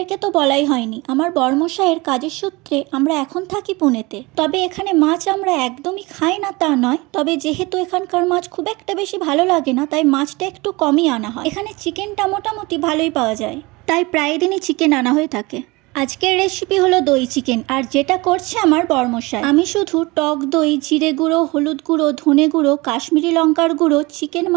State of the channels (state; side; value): quieter; left; 23.8 dB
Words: তো বলাই হয়নি, আমার বর্মশাইয়ের কাজের সূত্রে আমরা এখন থাকি পুনেতে। তবে এখানে মাছ আমরা একদমই খাই না তা নয়, তবে যেহেতু এখানকার মাছ খুব একটা বেশি ভালো লাগে না তাই মাছটা একটু কমই আনা হয়। এখানে চিকেনটা মোটামুটি ভালোই পাওয়া যায়, তাই প্রায় দিনই চিকেন আনা হয়ে থাকে। আজকের রেসিপি হলো দই চিকেন, আর যেটা করছে আমার বর্মশাই। আমি শুধু টক দই, জিরে গুঁড়ো, হলুদ গুঁড়ো, ধনে গুঁড়ো, কাশ্মীরি লঙ্কার গুঁড়ো, চিকেন